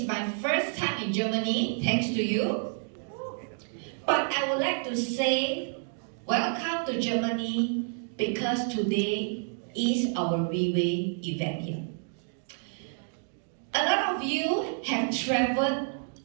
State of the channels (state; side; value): silent; left; 58 dB below the other